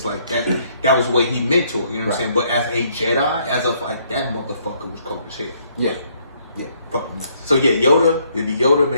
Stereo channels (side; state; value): both; inverted; correlation -0.68